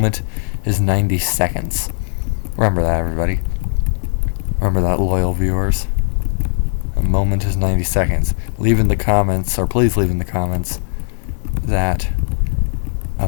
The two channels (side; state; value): right; silent; digital silence